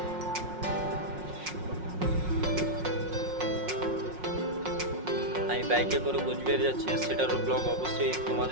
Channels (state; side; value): late; left; 5.5 ms